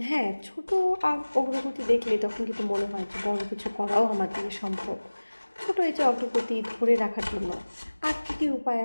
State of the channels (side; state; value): both; inverted; correlation -1.00